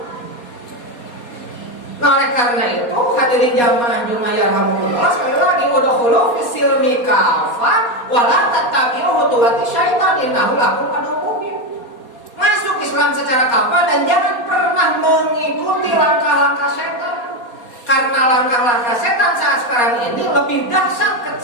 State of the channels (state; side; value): late; right; 4.2 ms